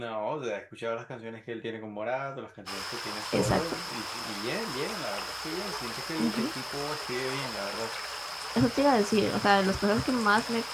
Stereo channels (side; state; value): both; identical; correlation 1.00